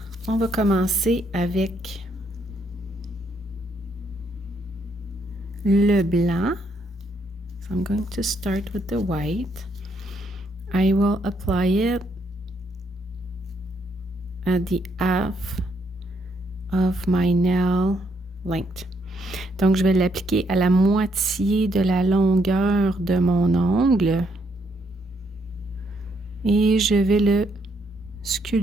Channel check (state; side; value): normal; both; correlation 0.74